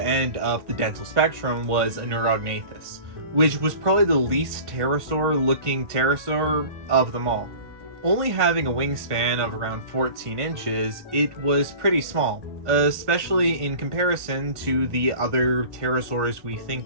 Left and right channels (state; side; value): late; left; 1.5 ms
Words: of the dental spectrum was a Neurognathus, which was probably the least pterosaur-looking pterosaur of them all. Only having a wingspan of around 14 inches, it was pretty small, especially in comparison to the other pterosaurs we